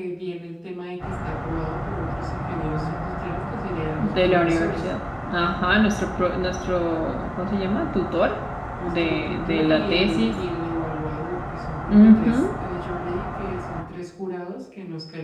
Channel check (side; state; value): both; identical; correlation 1.00